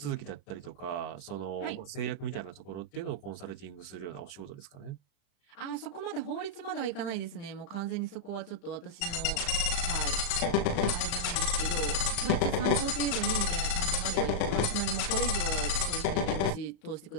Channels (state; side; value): late; right; 36 ms